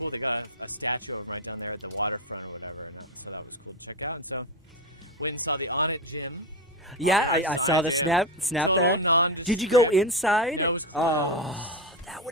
They got a statue right down there at the waterfront or whatever. So that was cool to check out. So went and saw the On It gym. Yeah, I saw the snap there. Did you go inside? That was cool. Oh, that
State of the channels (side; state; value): both; normal; correlation 0.15